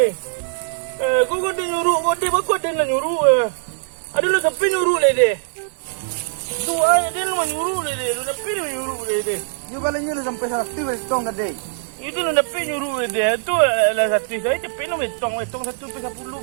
Kau dia nyuruh, kau dia nak nyuruh. Ada lu sampai nyuruh le dia. Tu dia lu nyuruh le dia. Lu sampai nyuruh le dia. Ini bahalanya lah sampai 100 beto gede. Itu lu sampai nyuruh le dia. Tu lah satu saya cepet lu metong 1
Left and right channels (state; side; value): silent; left; 65 dB below the other